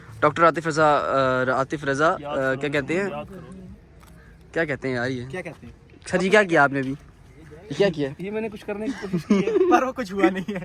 डॉक्टर आतिफ रजा क्या कहते हैं, क्या कहते हैं यार ये, क्या कहते हैं सर जी क्या किया आपने अभी, क्या किया? ये मैंने कुछ करने की कोशिश की है पर वो कुछ हुआ नहीं है।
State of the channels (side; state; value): both; identical; correlation 1.00